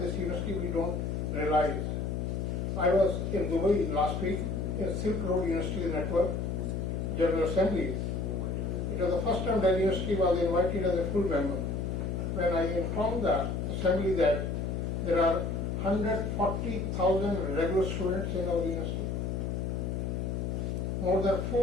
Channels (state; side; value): noise; left; hum, 1 dB below the sound